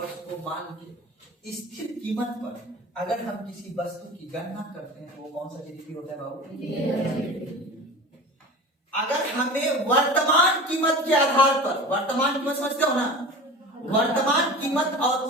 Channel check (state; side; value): normal; both; correlation 0.34